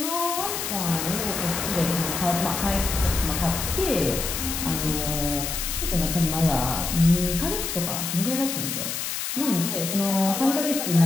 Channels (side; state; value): left; noise; hiss, 3 dB below the sound